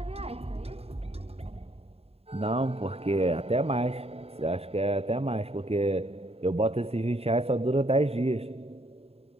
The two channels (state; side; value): late; left; 0.29 ms